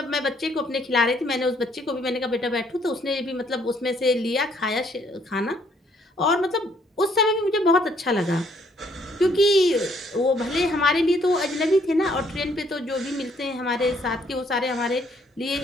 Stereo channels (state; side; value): normal; both; correlation 0.66